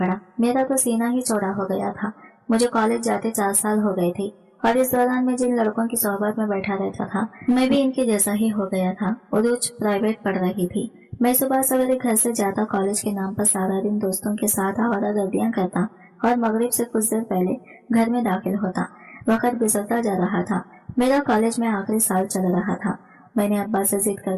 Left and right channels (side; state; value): both; identical; correlation 1.00